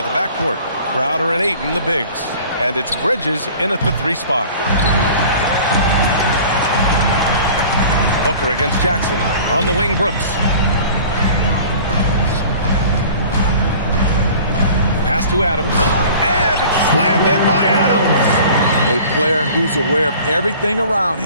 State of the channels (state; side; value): inverted; both; correlation -0.45